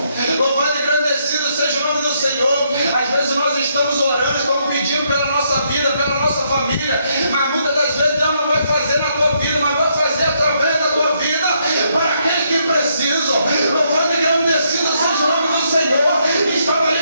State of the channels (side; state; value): both; inverted; correlation -0.74